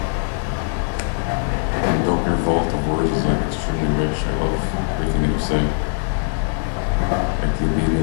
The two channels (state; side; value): silent; right; digital silence